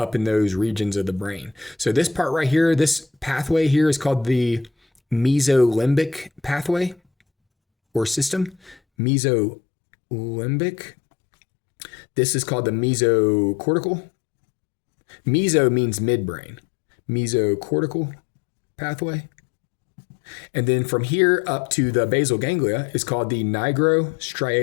in those regions of the brain. So this part right here, this pathway here is called the mesolimbic pathway or system. Mesolimbic. This is called the mesocortical. Meso means midbrain. Mesocortical pathway. And then from here up to the basal ganglia is called the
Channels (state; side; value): drops out; right; at 8.8 s